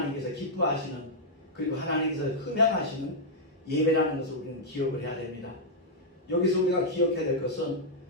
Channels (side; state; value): both; normal; correlation -0.06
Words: 기뻐하시는, 그리고 하나님께서 흠양하시는 예배라는 것을 우리는 기억을 해야 됩니다. 여기서 우리가 기억해야 될 것은